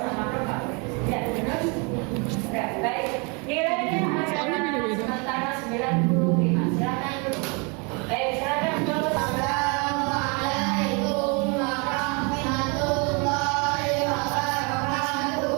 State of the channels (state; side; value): quieter; left; 32.5 dB